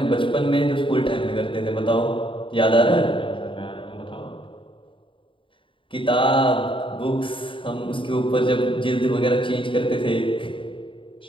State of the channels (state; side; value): late; right; 0.25 ms